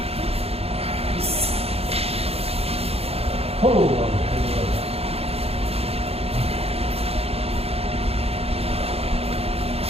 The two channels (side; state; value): left; late; 0.29 ms